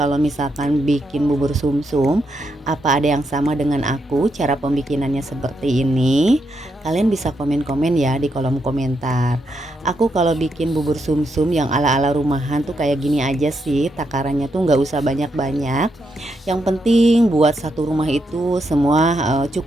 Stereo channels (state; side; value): normal; both; correlation 0.81